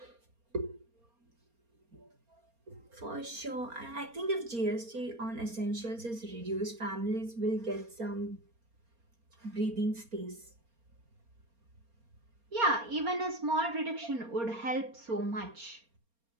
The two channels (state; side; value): late; left; 4.3 ms